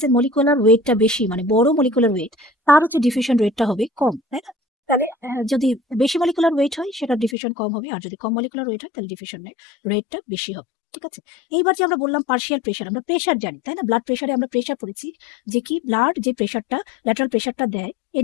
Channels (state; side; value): drops out; right; at 7.4 s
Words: মলিকুলার ওয়েটটা বেশি, মানে বড় মলিকুলার ওয়েট, তার হচ্ছে ডিফিউশন রেটটা হবে কম, তাই না? তাহলে যদি বেশি মলিকুলার ওয়েট হয়, সেটা ডিফিউশন কম হবে, আর যদি কম মলিকুলার ওয়েট হয়, তাহলে ডিফিউশন রেটটা বেশি হবে। ঠিক আছে, এইবার যে আমরা বললাম পার্শিয়াল প্রেশার, আমরা প্রেশার জানি, তাই না? ব্লাড প্রেশারে আমরা প্রেশার পড়েছি, যে কি ব্লাড যে প্রেশারটা, ল্যাটারাল প্রেশারটা দেয়